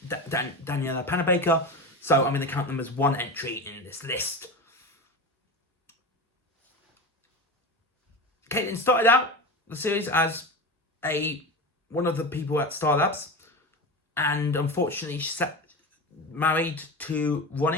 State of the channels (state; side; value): normal; both; correlation 0.25